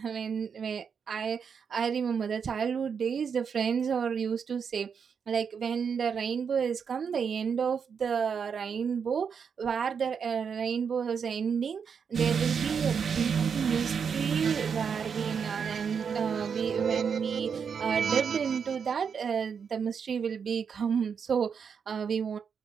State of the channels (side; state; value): left; quieter; 6.6 dB